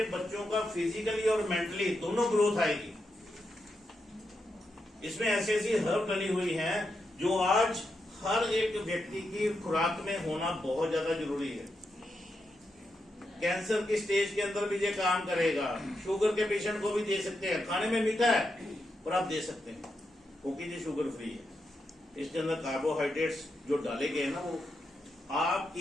बच्चों का फिजिकली और मेंटली दोनों ग्रोथ आएगी। इसमें ऐसी ऐसी हर्ब डली हुई हैं जो आज हर एक व्यक्ति की खुराक में होना बहुत ज्यादा जरूरी है। कैंसर की स्टेज के अंदर भी ये काम करेगा, शुगर के पेशेंट को भी दे सकते हैं। खाने में मीठा है पर आप दे सकते हैं क्योंकि ये शुगर फ्री है। इसके अंदर कार्बोहाइड्रेट्स जो डाले गए हैं ना, वो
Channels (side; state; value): both; normal; correlation 0.85